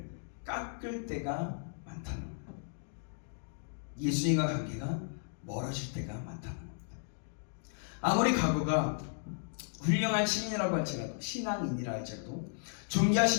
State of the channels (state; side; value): silent; right; digital silence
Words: 깎을 때가 많다는 거예요. 예수님과 관계가 멀어질 때가 많다는 겁니다. 아무리 과거가 훌륭한 신인이라고 할지라도, 신앙인이라 할지라도